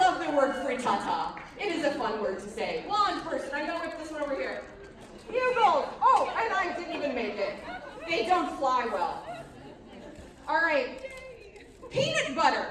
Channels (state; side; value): identical; both; correlation 1.00